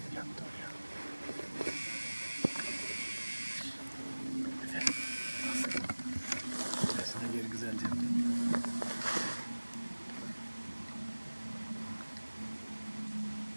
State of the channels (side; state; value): both; inverted; correlation -1.00